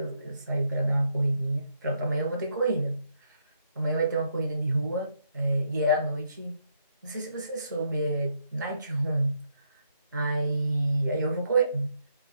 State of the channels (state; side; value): inverted; both; correlation -0.77